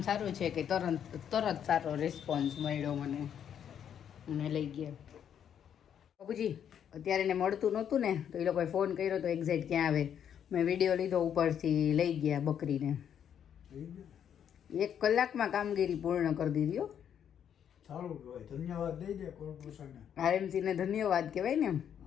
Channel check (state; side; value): quieter; right; 8.9 dB